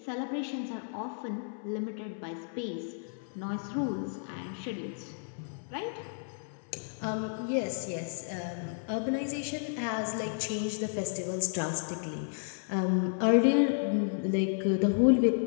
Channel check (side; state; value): right; silent; 56 dB below the other